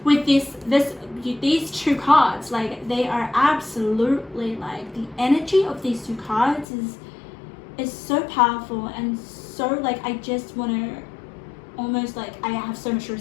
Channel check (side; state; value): right; drops out; at 6.7 s